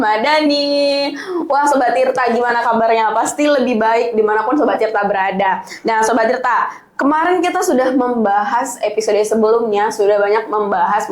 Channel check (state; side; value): identical; both; correlation 1.00